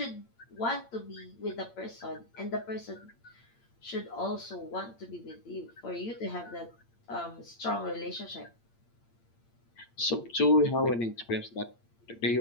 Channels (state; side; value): late; right; 8.7 ms